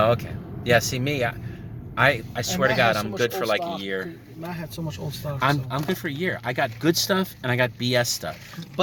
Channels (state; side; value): identical; both; correlation 1.00